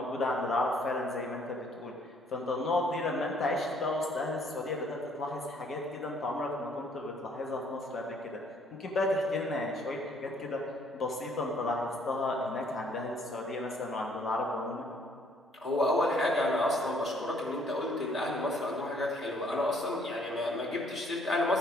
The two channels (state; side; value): normal; both; correlation 0.63